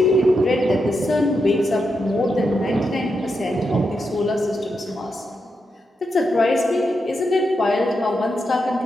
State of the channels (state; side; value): normal; both; correlation 0.85